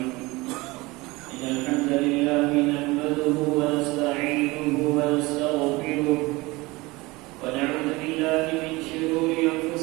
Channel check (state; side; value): quieter; left; 22.4 dB